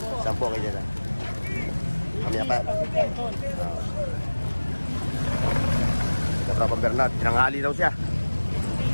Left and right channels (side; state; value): both; inverted; correlation -1.00